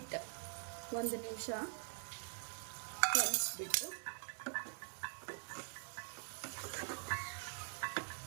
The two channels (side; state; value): left; silent; digital silence